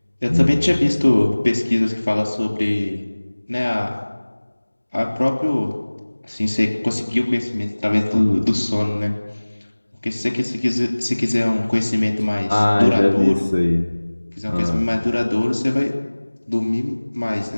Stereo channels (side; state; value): both; inverted; correlation -1.00